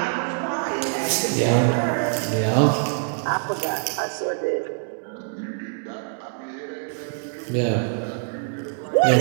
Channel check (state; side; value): silent; left; digital silence